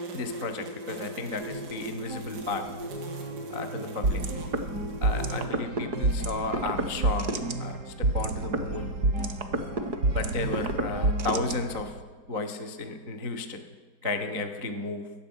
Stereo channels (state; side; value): late; left; 4.7 ms